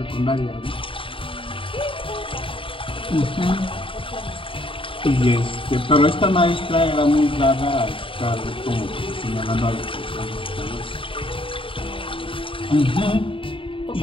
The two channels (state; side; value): late; right; 0.25 ms